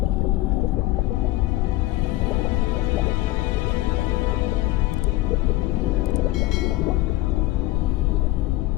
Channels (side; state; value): right; quieter; 17.7 dB